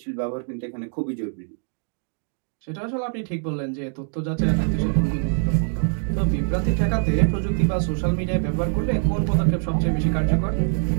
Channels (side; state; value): left; silent; 56 dB below the other